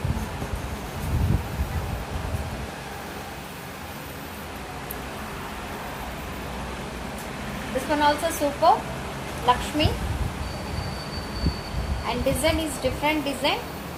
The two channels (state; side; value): identical; both; correlation 1.00